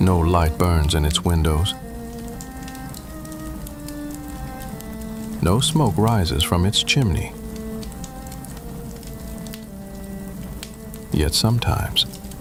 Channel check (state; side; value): identical; both; correlation 1.00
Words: No light burns in its windows. No smoke rises from its chimney. Yet sometimes,